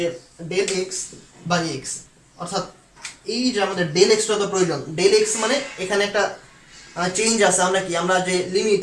ডেল এক্স বাই এক্স, অর্থাৎ এই যে আমাদের ডেল এক্সটা তো প্রয়োজন। ডেল এক্স মানে এখানে একটা চেঞ্জ আছে, আমরা কি আমরা যে লিমিট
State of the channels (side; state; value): both; identical; correlation 1.00